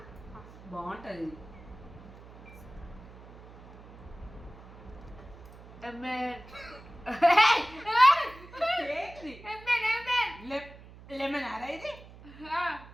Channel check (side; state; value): right; noise; hum, 18 dB below the sound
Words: బాగుంటుంది. లెమన్ అరా ఇది?